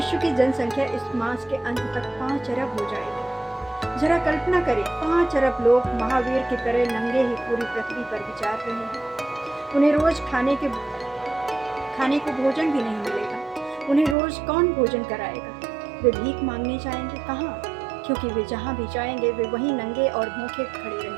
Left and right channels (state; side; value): drops out; left; at 14.2 s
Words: की जनसंख्या इस मास के अंत तक 5 अरब हो जाएगी। जरा कल्पना करें, 5 अरब लोग महावीर की तरह नंगे ही पूरी पृथ्वी पर विचार रहे हैं। उन्हें रोज खाने को भोजन भी नहीं मिलेगा। उन्हें रोज कौन भोजन कराएगा? वे भीख मांगने जाएंगे कहाँ? क्योंकि वे जहाँ भी जाएंगे वे वहीं नंगे और भूखे खड़े